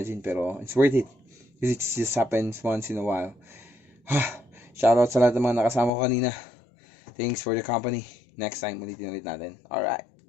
Pero, it's worth it. Because it just happens once in a while. Shoutout sa lahat ng mga nakasama ko kanina. Thanks for the company. Next time, ulitin natin. Alright.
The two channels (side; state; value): right; drops out; at 5.9 s